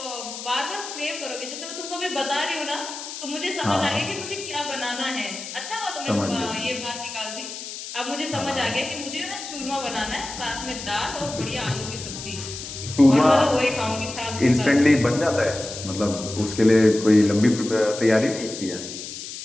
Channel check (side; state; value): left; noise; hiss, 9 dB below the sound